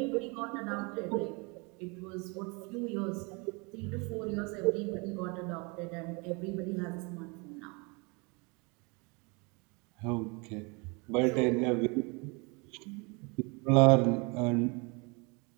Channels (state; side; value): quieter; left; 30.0 dB